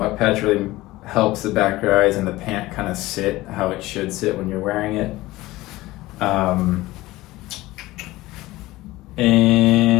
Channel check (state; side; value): quieter; right; 18.4 dB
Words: patch really helps the back rise and the pant kind of sit how it should sit when you're wearing it.